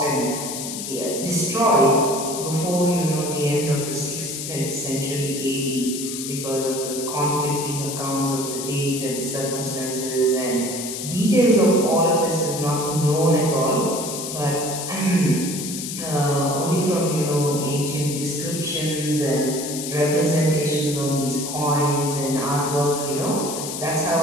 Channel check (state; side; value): noise; left; hiss, 6 dB below the sound